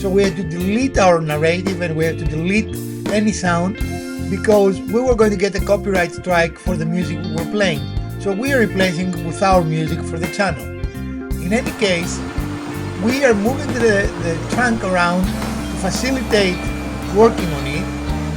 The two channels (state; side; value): identical; both; correlation 1.00